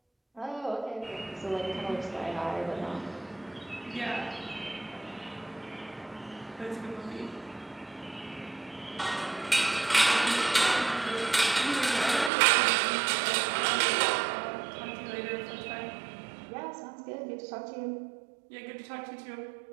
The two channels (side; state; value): left; drops out; at 12.3 s